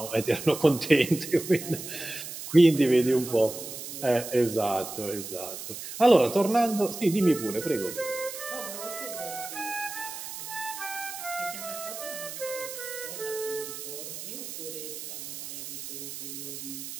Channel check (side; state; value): right; noise; hiss, 9 dB below the sound